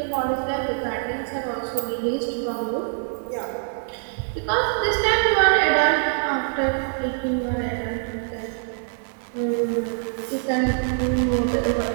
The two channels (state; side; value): silent; left; digital silence